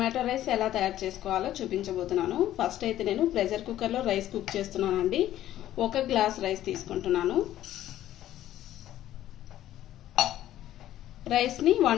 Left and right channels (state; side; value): quieter; right; 13.0 dB